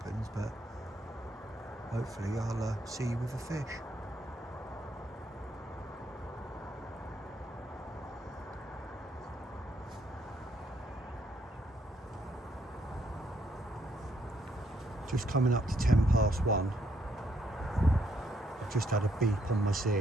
but hopefully I'll see you with a fish. Just coming up to 1:10. I've just had a beep on my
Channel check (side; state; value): both; normal; correlation 0.73